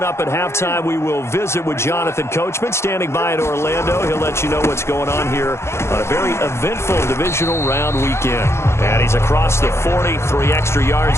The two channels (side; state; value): right; late; 0.13 ms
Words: up at halftime, we will visit with Jonathan Coachman, standing by in Orlando. He'll let you know what's going on here on a very eventful divisional round weekend. And he's across the 40, 3 extra